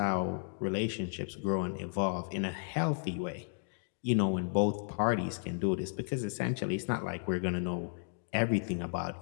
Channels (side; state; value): right; silent; digital silence